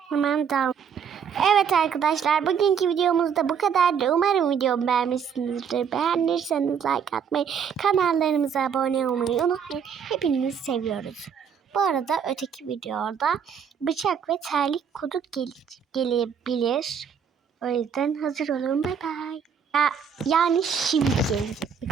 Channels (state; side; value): quieter; left; 7.1 dB